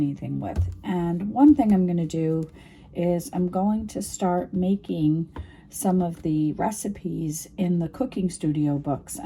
with. And one thing I'm going to do is I'm going to start making some of the recipes in the cooking studio books,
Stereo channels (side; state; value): both; identical; correlation 1.00